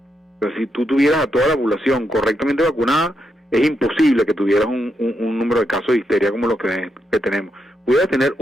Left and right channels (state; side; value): normal; both; correlation 0.82